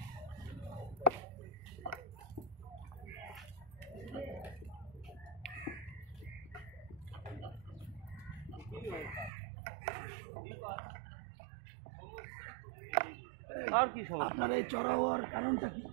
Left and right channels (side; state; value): left; drops out; at 9.3 s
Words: আর কি সমস্যা? আপনার এই চড়া হওয়ার কারণটা কি?